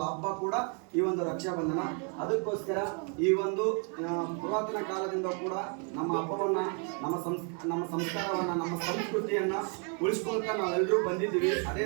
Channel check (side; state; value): left; quieter; 38.1 dB